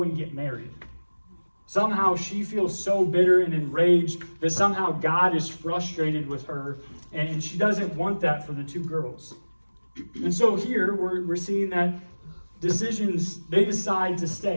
and get married. Somehow she feels so bitter and enraged that somehow God is frustrated with her, and she doesn't want that for the 2 girls. And so here we're seeing that decisions, they decide to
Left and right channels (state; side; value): inverted; both; correlation -1.00